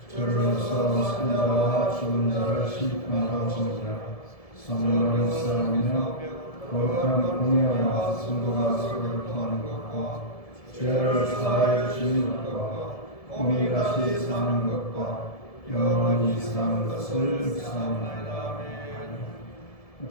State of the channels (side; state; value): right; late; 1.7 ms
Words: 저로서 산자와 죽은 자를 심판하시니라. 성령을 쌓으며 거룩한 공예와 성도가 서로를 통하는 것과 죄를 사하여 주시는 것과 몸이 다시 사는 것과 영원히 사는 것을 묵상하나이다.